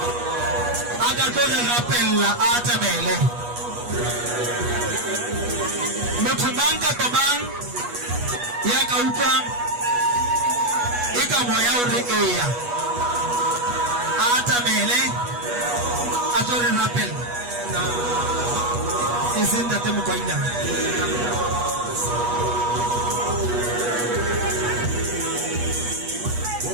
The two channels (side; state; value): left; late; 8.3 ms